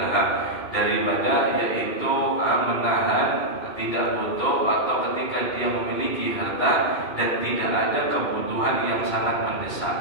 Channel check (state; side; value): late; right; 2.6 ms